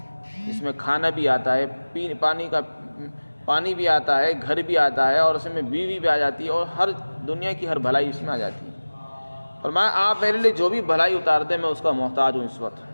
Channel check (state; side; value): inverted; both; correlation -1.00